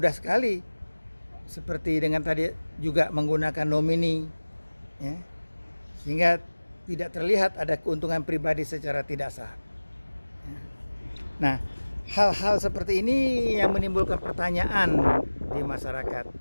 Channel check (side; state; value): both; inverted; correlation -1.00